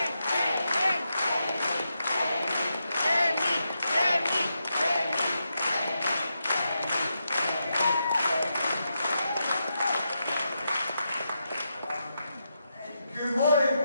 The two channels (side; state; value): both; inverted; correlation -0.85